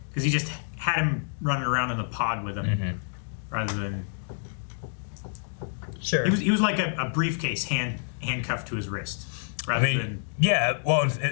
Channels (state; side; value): silent; right; 60 dB below the other